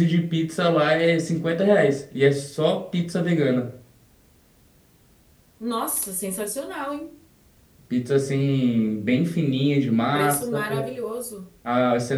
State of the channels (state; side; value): identical; both; correlation 1.00